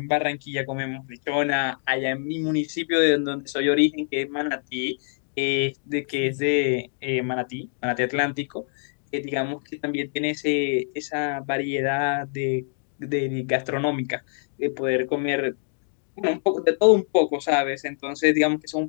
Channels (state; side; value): silent; right; 62 dB below the other